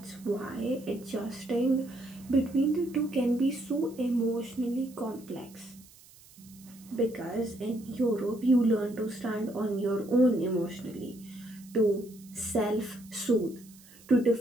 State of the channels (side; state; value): right; noise; hiss, 24 dB below the sound